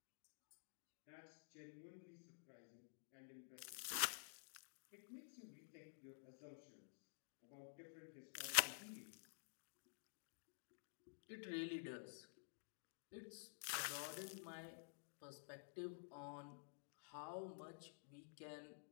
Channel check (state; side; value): silent; right; digital silence